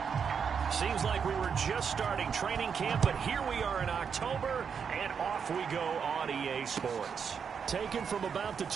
Seems like we were just starting training camp, but here we are in October, and off we go on EA Sports. Taken from about the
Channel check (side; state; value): left; quieter; 6.7 dB